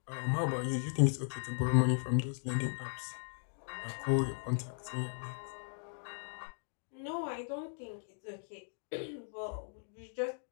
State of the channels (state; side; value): silent; right; digital silence